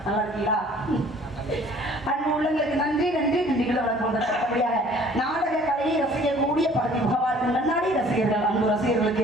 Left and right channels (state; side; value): normal; both; correlation 0.54